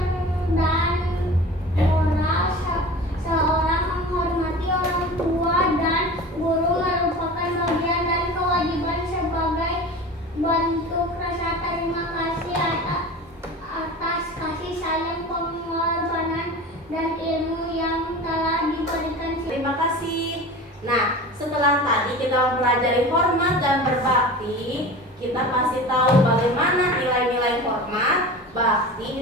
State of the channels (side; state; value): both; normal; correlation 0.35